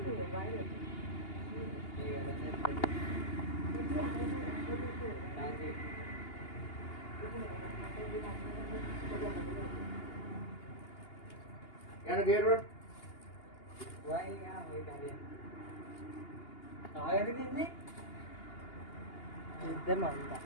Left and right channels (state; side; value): late; right; 2.8 ms